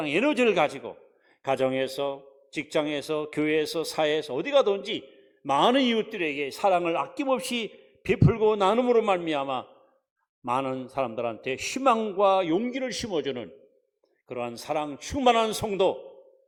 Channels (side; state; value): both; identical; correlation 1.00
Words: 에너지를 가지고 가정에서, 직장에서, 교회에서, 사회에서 어디 가든지 많은 이웃들에게 사랑을 아낌없이 베풀고 나눔으로 말미암아 많은 사람들한테 희망과 용기를 심어주는 그러한 사랑 충만한 성도